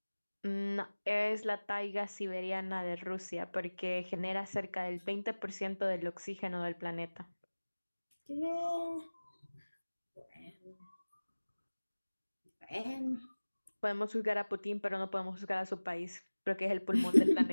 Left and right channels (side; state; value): both; inverted; correlation -1.00